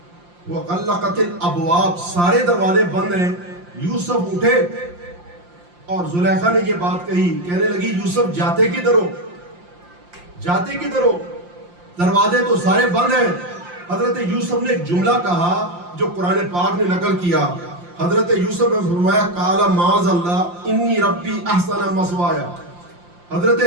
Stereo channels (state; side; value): late; left; 5.7 ms